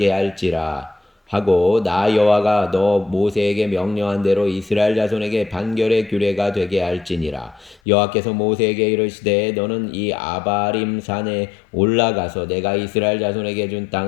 할지라 하고 나 여호와가 너 모세에게 명령한 대로 이스라엘 자손에게 판결의 규례가 되게 할지니라. 여호와께서 모세에게 이르시되 너는 이 아바림 산에 올라가서 내가 이스라엘 자손에게 준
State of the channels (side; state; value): right; drops out; at 7.8 s